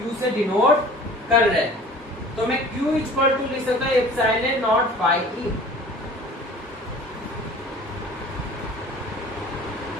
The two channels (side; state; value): both; normal; correlation 0.45